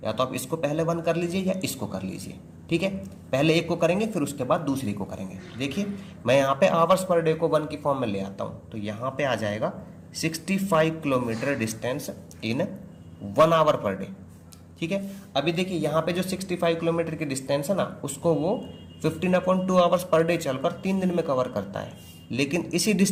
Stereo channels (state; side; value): identical; both; correlation 1.00